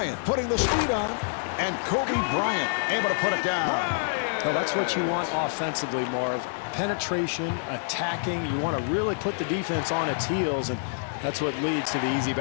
putting the speed on, and Kobe Bryant able to put it down. Well, that's what you want offensively, Marv. Penetration, attacking. You want to really put the defense on its heels, and that's what leads to the easy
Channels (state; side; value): silent; right; 60 dB below the other